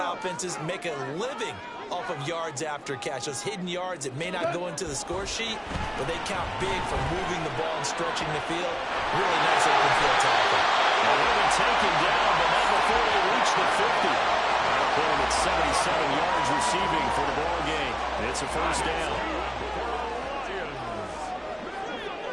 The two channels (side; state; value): both; identical; correlation 1.00